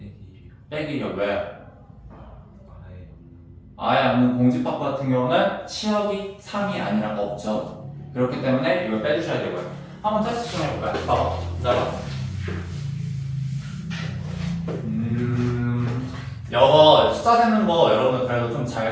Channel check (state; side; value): identical; both; correlation 1.00